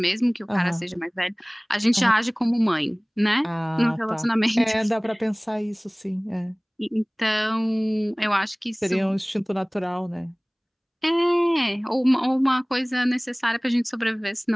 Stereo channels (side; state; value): both; identical; correlation 1.00